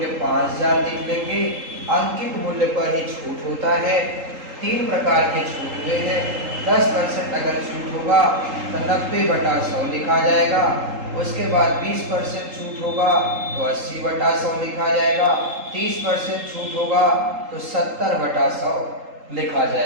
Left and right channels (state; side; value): late; left; 3.8 ms